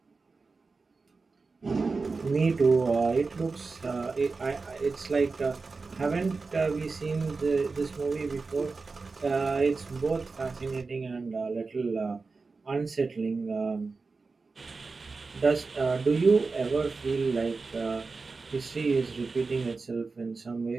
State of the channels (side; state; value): left; quieter; 4.2 dB